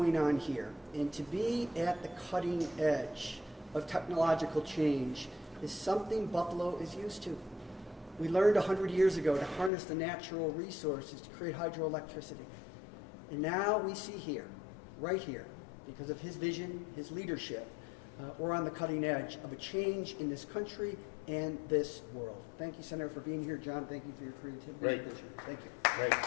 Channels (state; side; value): drops out; right; at 9.7 s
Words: on here. And to be at the cutting edge of technological change is something Buffalo is used to. We learned 100 years ago to harness the natural resources to create hydroelectricity. And now we see here, right here, because of his vision, his leadership, we're on the cutting edge of a change in this country and this world. Thank you, Senator, for being here. John, thank you for your creativity. Great. and vision. Thank you. Great.